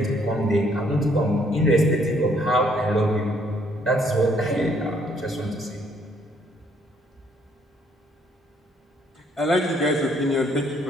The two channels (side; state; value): both; normal; correlation 0.67